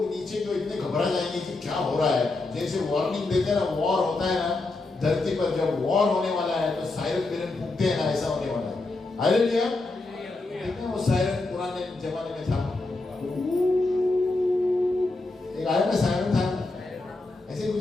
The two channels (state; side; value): quieter; right; 3.2 dB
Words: नीचे तो इतने घबरा जाएंगे कि क्या हो रहा है। जैसे वार्निंग देते हैं ना, वॉर होता है ना धरती पर, जब वॉर होने वाला है तो सायरन बिरन फूकते हैं ना, ऐसा होने वाला है। हालेलुया। देखते हैं वो सायरन पुराने जमाने में था, एक आया ना सायरन था, ऐसे